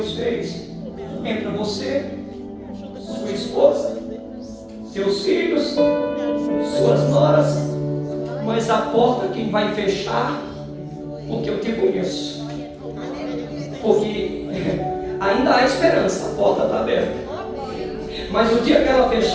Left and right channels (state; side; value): identical; both; correlation 1.00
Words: fez? Entra você, sua esposa, seus filhos, suas noras, mas a porta quem vai fechar? Porque eu te conheço. Porque ainda há esperança, a porta está aberta. Mas o dia que ela